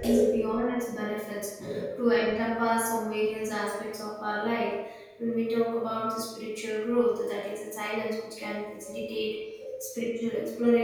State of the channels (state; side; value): identical; both; correlation 1.00